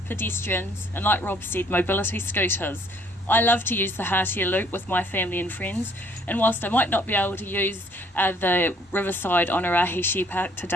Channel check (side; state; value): both; normal; correlation 0.62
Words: pedestrians, and like Rob said, mobility scooters. I love to use the Hatia Loop with my family and friends, and whilst I might not be able to use the Riverside Onerahi Shared Path